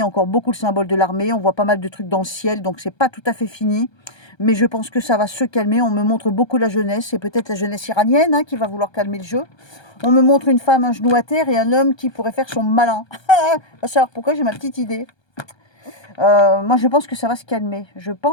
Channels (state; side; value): late; right; 1.3 ms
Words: encore beaucoup le symbole de l'armée. On voit pas mal de trucs dans le ciel. Donc, c'est pas tout à fait fini. Mais je pense que ça va se calmer. On me montre beaucoup la jeunesse. C'est peut-être la jeunesse iranienne, hein, qui va vouloir calmer le jeu. On me montre une femme à genoux à terre et un homme qui pourrait faire son malin. Va savoir pourquoi, j'ai ma petite idée. Moi, je pense que ça va se calmer. Je